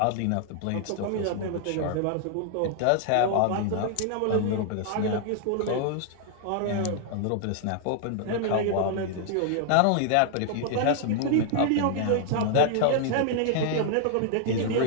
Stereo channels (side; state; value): both; different; correlation -0.01